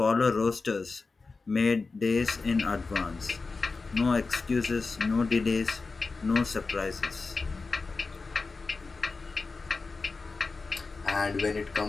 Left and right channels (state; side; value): quieter; right; 4.1 dB